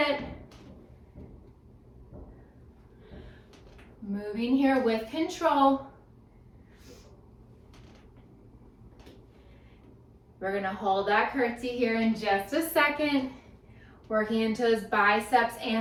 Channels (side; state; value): both; identical; correlation 1.00